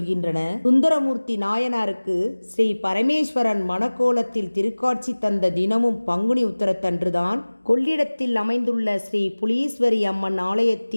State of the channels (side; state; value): both; inverted; correlation -1.00